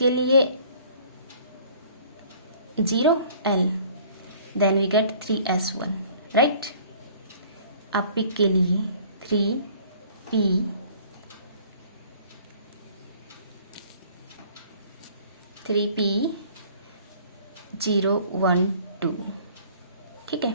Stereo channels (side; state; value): both; inverted; correlation -0.53